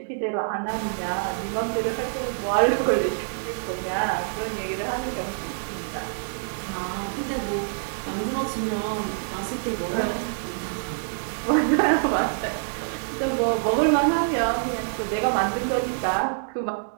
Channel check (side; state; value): left; silent; digital silence